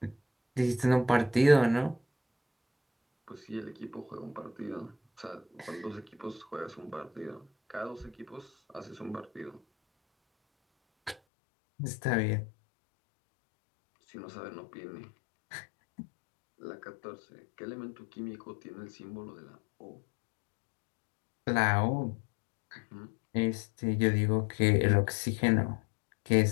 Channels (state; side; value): drops out; right; at 11.2 s